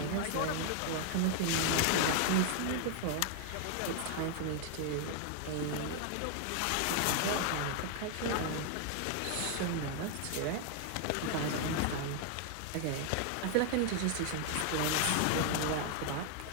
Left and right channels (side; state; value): both; different; correlation 0.00